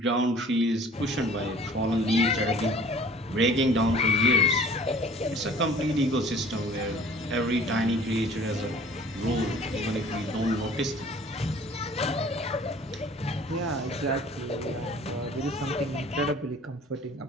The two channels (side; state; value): both; normal; correlation 0.50